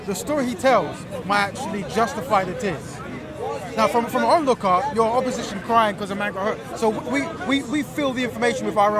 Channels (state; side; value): identical; both; correlation 1.00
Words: the story he tells might actually justify the tears. Now, from our own lookout, your opposition crying because a man got hurt. So we fill the information with our